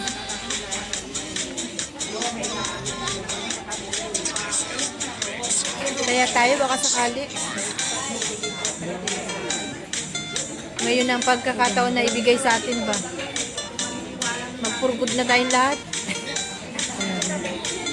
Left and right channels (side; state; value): both; identical; correlation 1.00